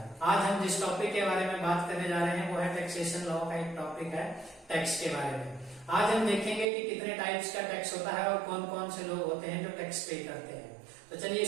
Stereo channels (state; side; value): drops out; left; at 6.7 s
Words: आज हम जिस टॉपिक के बारे में बात करने जा रहे हैं वो है टैक्सेशन लॉ का एक टॉपिक है टैक्स के बारे में। आज हम देखेंगे कि कितने टाइप्स का टैक्स होता है और कौन कौन से लोग होते हैं जो टैक्स पे करते हैं। तो चलिए